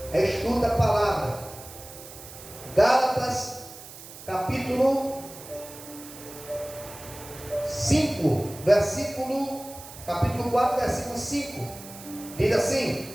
Estuda a palavra. Gálatas, capítulo 5, capítulo 4, versículo 5. Diz assim:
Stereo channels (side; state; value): right; noise; hiss, 16 dB below the sound